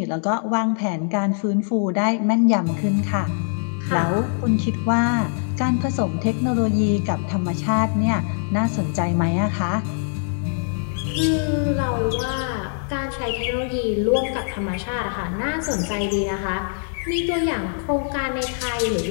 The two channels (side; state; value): right; silent; 64 dB below the other